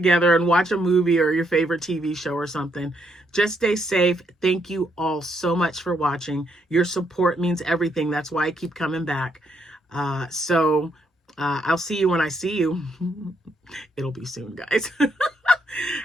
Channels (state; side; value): normal; both; correlation 0.75